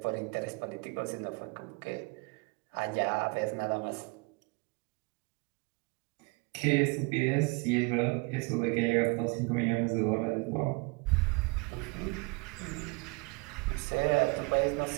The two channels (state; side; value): quieter; left; 29.5 dB